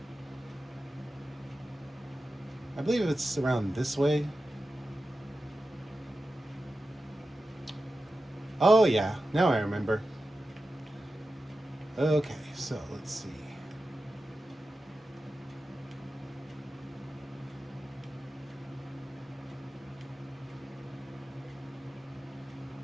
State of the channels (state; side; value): normal; both; correlation 0.92